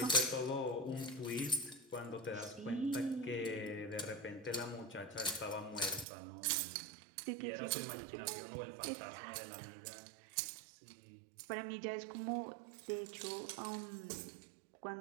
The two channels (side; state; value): left; drops out; at 6.1 s